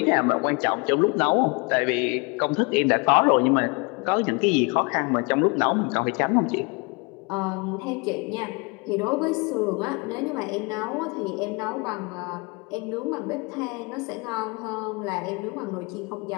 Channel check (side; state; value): right; quieter; 30.0 dB